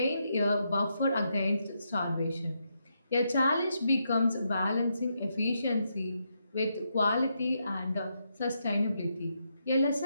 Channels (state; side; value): inverted; both; correlation -0.81